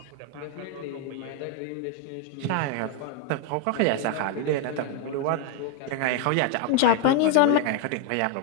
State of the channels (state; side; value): different; both; correlation 0.01